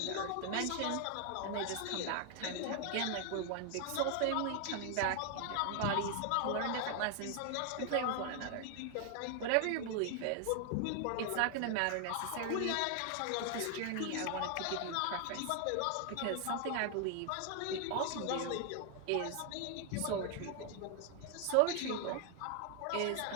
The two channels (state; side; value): different; both; correlation 0.00